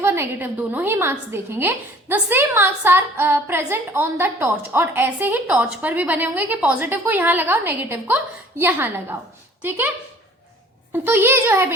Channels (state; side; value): normal; both; correlation 0.51